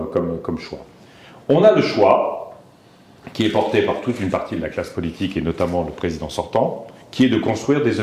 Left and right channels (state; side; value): identical; both; correlation 1.00